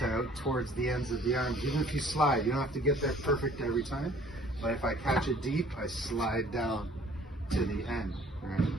towards the ends of the arms. Even if you slide, you don't have to get there perfect every time, but if I catch it deep, I slide down to the end, right?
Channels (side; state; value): both; normal; correlation 0.54